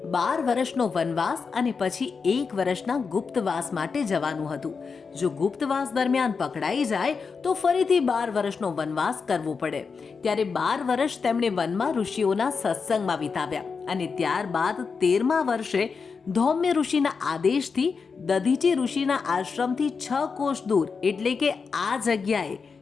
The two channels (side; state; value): right; quieter; 5.2 dB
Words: 12 વર્ષનો વનવાસ અને પછી 1 વર્ષના ગુપ્તવાસ માટે જવાનું હતું. જો ગુપ્તવાસ દરમિયાન પકડાઈ જાય તો ફરીથી 12 વર્ષનો વનવાસ કરવો પડે. ત્યારે 12 વર્ષ તેમણે વનમાં ઋષિઓના સત્સંગમાં વિતાવ્યા અને ત્યારબાદ 13મા વર્ષે ધૌમ્ય ઋષિના આદેશથી દધીચી ઋષિના આશ્રમથી 6 કોષ દૂર એટલે કે આ જગ્યાએ